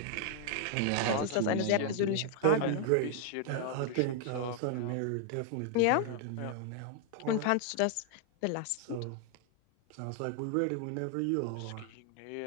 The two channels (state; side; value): different; both; correlation 0.00